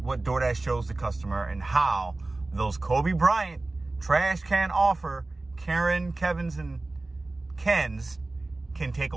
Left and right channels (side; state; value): left; quieter; 3.1 dB